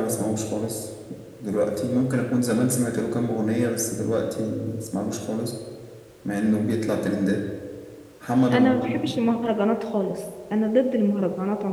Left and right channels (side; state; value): both; identical; correlation 1.00